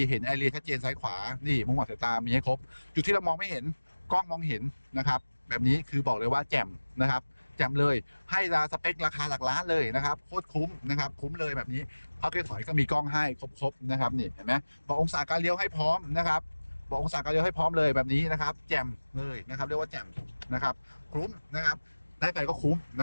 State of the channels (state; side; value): inverted; both; correlation -1.00